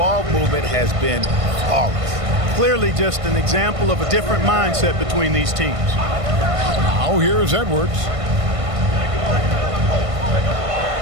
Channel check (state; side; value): late; left; 1.5 ms